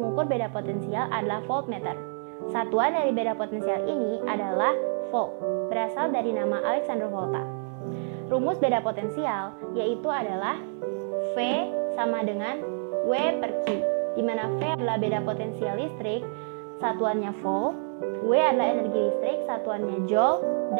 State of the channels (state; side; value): silent; left; digital silence